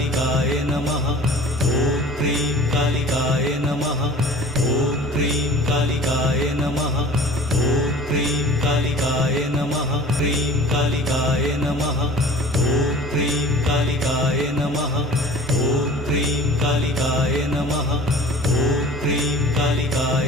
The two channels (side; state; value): both; normal; correlation 0.44